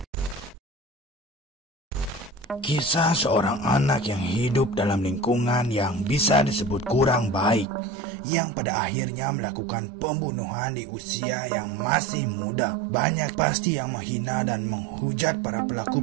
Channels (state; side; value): drops out; left; at 7.7 s